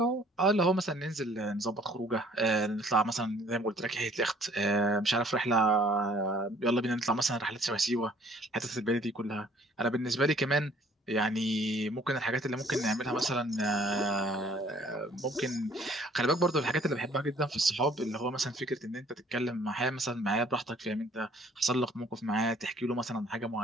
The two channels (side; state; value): both; normal; correlation 0.57